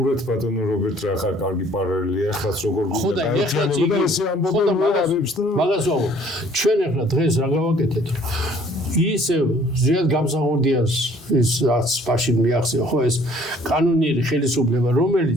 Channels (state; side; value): normal; both; correlation 0.57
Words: ბატონო რობერტ რა ხარ კარგი პარალელია ახლაც როგორ ხო და ეხლა მაგას ვამბობ. ჩვენ ეხლა დღეს რა გავაკეთეთ ისე ზიად გამსახურდიას ის რაც მაშინ მიახსევა ხო ეს კანონიერი ხელისუფლება